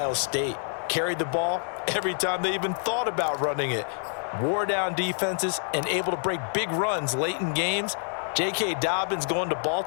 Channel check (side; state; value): right; silent; 60 dB below the other